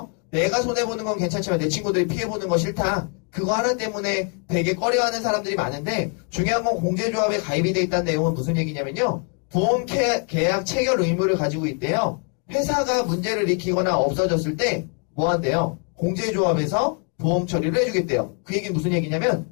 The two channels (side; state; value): right; quieter; 38.4 dB